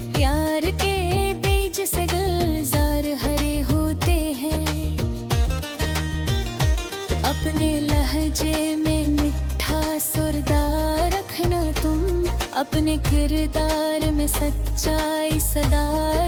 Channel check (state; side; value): identical; both; correlation 1.00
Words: प्यार के बीज से गुलजार हरे होते हैं। अपने लहजे में मिठा सुरदार रखना तुम, अपने किरदार में सच्चाई सदा